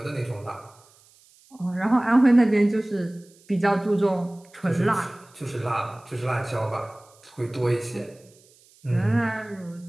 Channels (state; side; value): noise; right; hiss, 29 dB below the sound